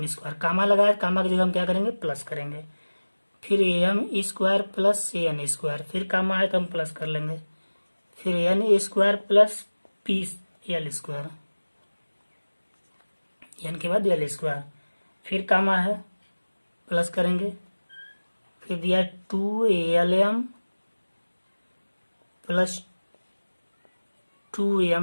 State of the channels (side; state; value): both; inverted; correlation -1.00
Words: square, comma लगाए, कामा की जगह हम क्या करेंगे प्लस करेंगे। फिर M square plus N square, फिर कामा है तो हम प्लस कर लेंगे। फिर N square plus P L square, N के बाद एल स्क्वायर, फिर कामा है प्लस करेंगे। फिर दिया 2ALM प्लस